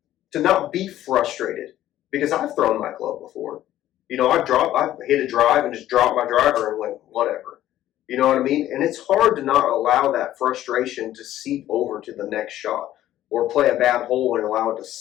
To not be frustrated, because I've thrown my club before. You know, I've hit a drive and just dropped my driver and went, whatever. You know what I mean? And it's hard to not allow that frustration to seep over to the next shot, or play a bad hole and allow it to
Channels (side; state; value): right; quieter; 13.2 dB